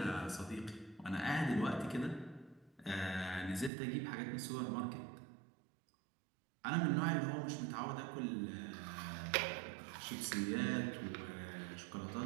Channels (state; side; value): drops out; left; at 3.7 s